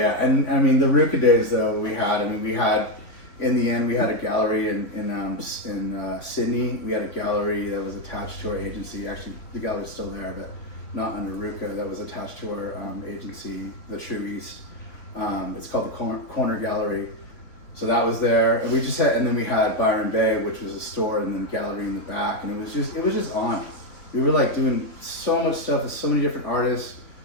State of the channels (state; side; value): late; right; 3.5 ms